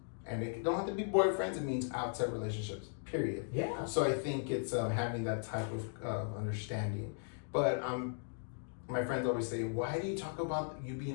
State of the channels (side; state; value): right; silent; digital silence